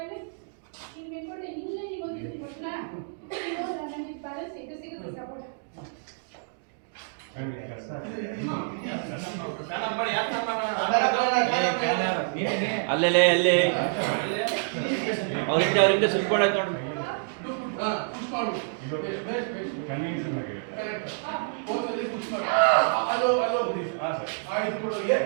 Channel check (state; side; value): silent; left; digital silence